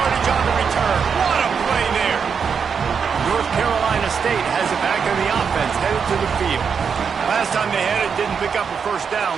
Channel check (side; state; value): left; quieter; 6.4 dB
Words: on the return. What a play there. North Carolina State has it back on the offense, headed to the field. Last time they had it, didn't pick up a first down.